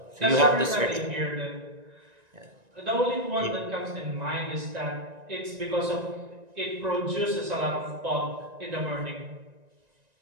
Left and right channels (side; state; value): left; late; 1.9 ms